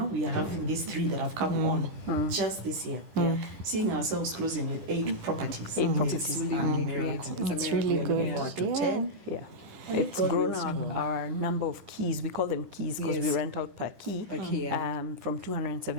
we are having these 3 that have come on. Just this year, seeing ourselves closing with 8 properties. It's really good. Forward to 10. It's grown our number of keys. We call them keys because we rent out per key from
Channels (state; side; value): late; left; 10 ms